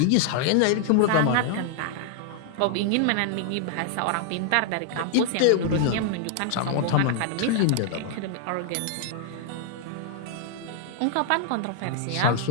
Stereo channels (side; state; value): both; different; correlation -0.01